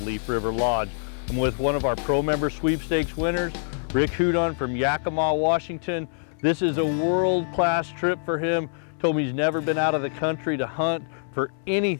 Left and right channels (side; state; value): right; silent; 62 dB below the other